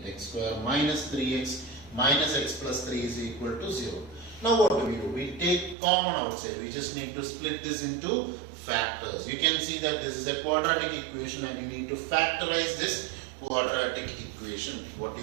it. X square minus 3x minus x plus 3 is equal to 0. Now what do? We take common outside. We just need to split this into factors. You can see that this is a quadratic equation and you need to factorize this quadratic equation. What do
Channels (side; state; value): left; drops out; at 5.8 s